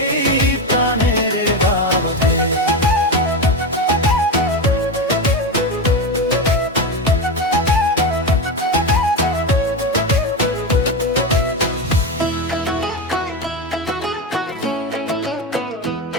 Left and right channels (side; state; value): both; normal; correlation 0.16